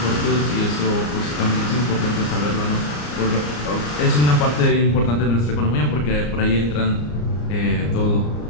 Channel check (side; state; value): right; late; 34 ms